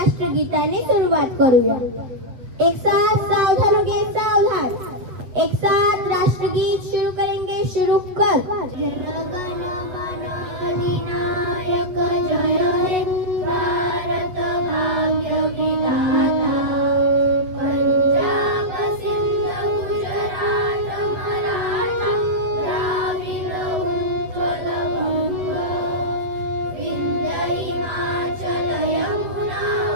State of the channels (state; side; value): late; left; 8.3 ms